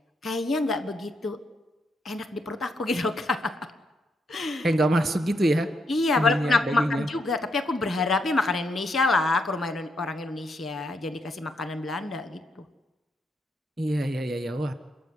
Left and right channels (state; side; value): normal; both; correlation 0.78